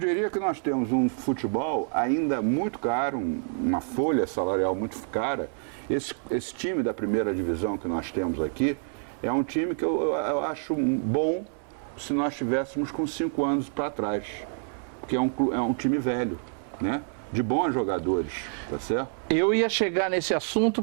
que nós temos um futebol ainda muito caro, uma folha salarial muito cara. Esse time da primeira divisão que nós temos aqui é um time que eu acho bom se nós estivéssemos com 5 anos para trás, porque é um time velho, né? De bons jogadores, tá certo? Eu ia chegar nesse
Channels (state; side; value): silent; left; 60 dB below the other